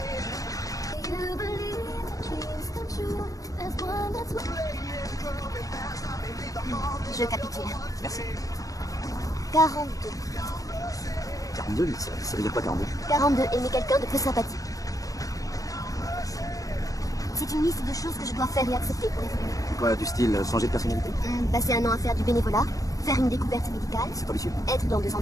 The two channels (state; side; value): late; right; 0.17 ms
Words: Do you believe that dreams come true? There's one that's Je capitule. Merci. 42. 42, ça veut dire quoi 42? 42, aimer quelqu'un de peu sympathique. C'est une liste de choses que je dois faire et accepter pour évoluer. Quoi, du style changer de personnalité? Passer un an à faire du bénévolat, faire une découverte médicale, C'est ambitieux. être dans 2